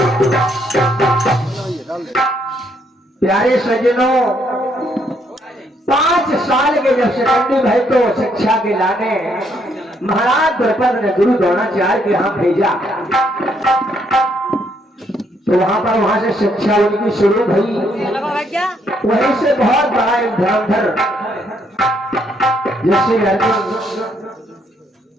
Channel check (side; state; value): both; normal; correlation 0.72